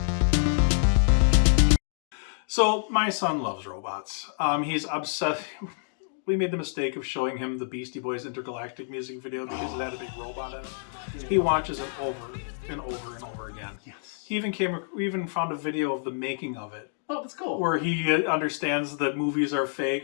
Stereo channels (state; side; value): silent; right; digital silence